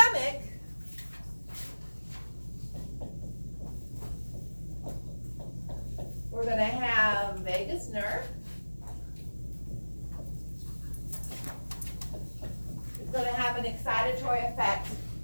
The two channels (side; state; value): both; inverted; correlation -1.00